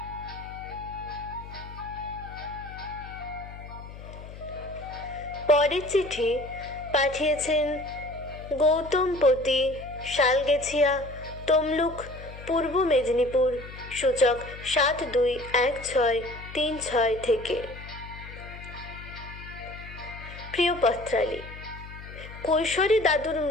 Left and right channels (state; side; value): noise; left; hum, 14 dB below the sound